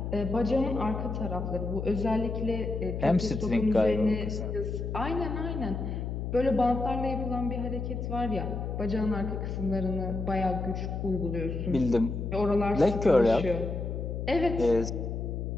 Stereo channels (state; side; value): noise; left; hum, 4 dB below the sound